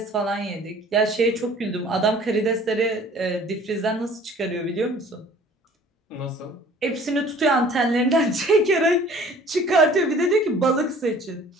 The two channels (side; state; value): both; normal; correlation 0.51